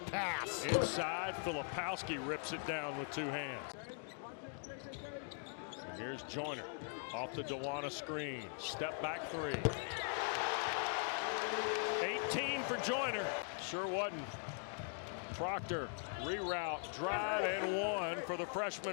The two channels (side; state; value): right; silent; 50 dB below the other